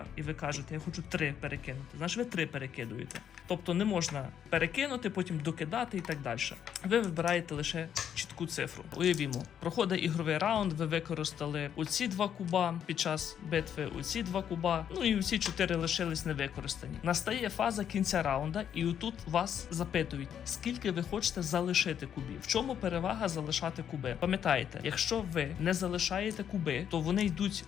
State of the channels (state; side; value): quieter; right; 9.0 dB